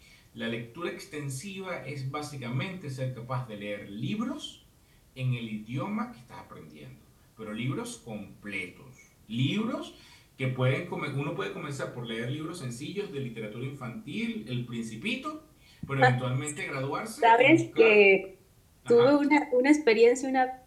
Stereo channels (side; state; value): both; identical; correlation 1.00